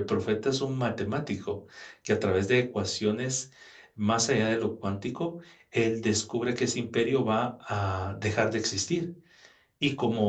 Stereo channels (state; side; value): identical; both; correlation 1.00